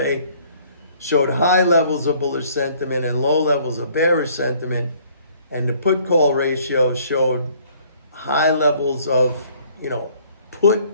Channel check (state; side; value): inverted; both; correlation -0.59